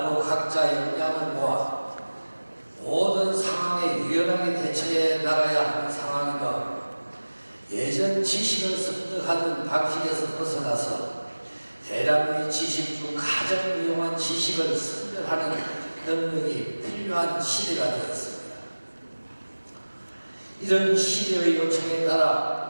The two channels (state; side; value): inverted; both; correlation -1.00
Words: 각자 역량을 모아 모든 상황에 유연하게 대처해 나가야 하는 상황이며 예전 지식을 습득하는 방식에서 벗어나서 대량의 지식 중 가장 유용한 지식을 선별하는 능력이 필요한 시대가 되었습니다. 이런 시대의 요청에